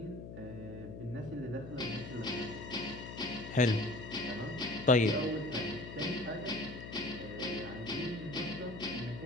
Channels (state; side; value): noise; left; hum, 10 dB below the sound